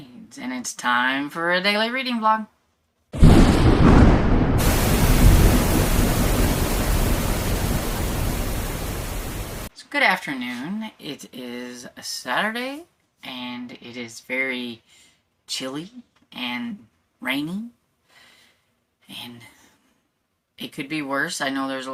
and it's time for a daily reading vlog. So good afternoon. It is a Saturday, and it is very chilly and rainy, and it could be worse. I know there's a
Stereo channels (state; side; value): identical; both; correlation 1.00